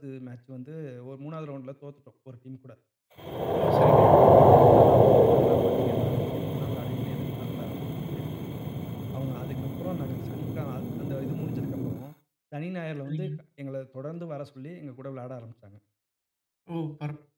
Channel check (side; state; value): both; identical; correlation 1.00